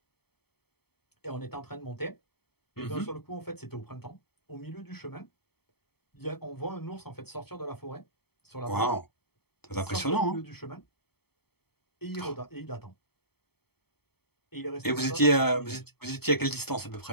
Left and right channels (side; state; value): right; late; 0.96 ms